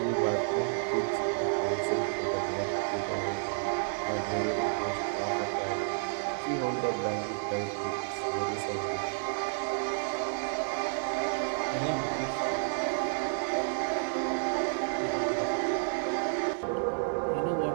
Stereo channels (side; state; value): left; silent; digital silence